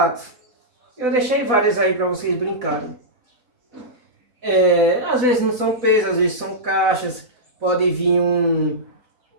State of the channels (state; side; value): late; left; 4.1 ms